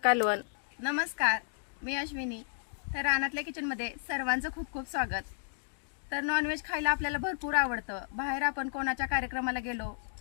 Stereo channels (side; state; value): right; silent; digital silence